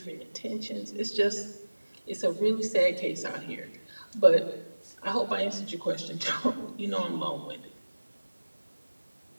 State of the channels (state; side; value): inverted; both; correlation -1.00